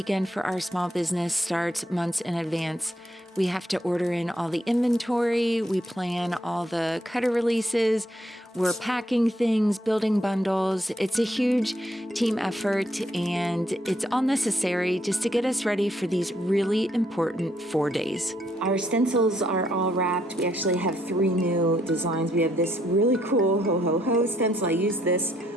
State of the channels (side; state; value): both; normal; correlation 0.72